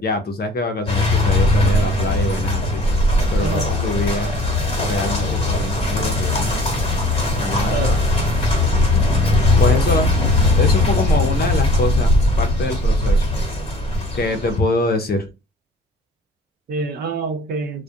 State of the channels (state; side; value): normal; both; correlation 0.51